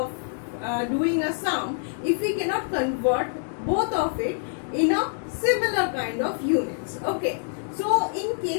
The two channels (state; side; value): silent; right; 61 dB below the other